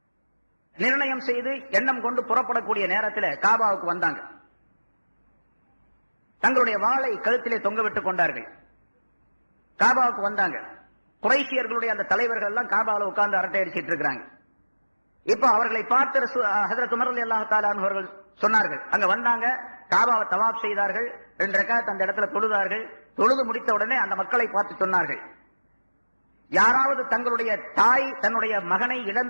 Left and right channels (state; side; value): inverted; both; correlation -1.00